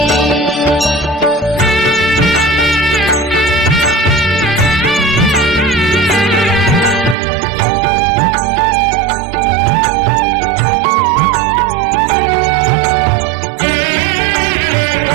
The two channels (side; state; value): left; drops out; at 7.2 s